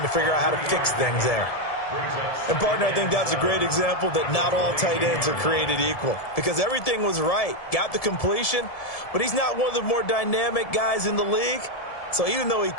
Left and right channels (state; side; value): late; right; 1.7 ms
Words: to figure out how to fix things there. And, partner, I think that's a great example that not all tight ends are created equal, because everything was right. Got the completion, but he's not one of the more dynamic guys in the league. So even though he